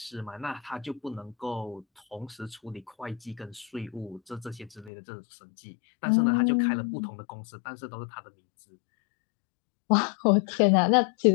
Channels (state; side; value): drops out; right; at 4.9 s